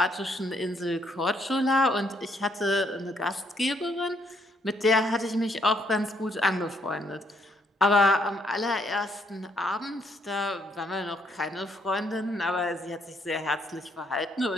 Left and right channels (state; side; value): normal; both; correlation 0.71